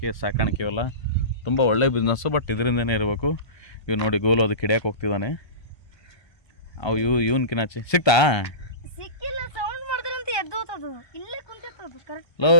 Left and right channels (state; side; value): late; right; 1.3 ms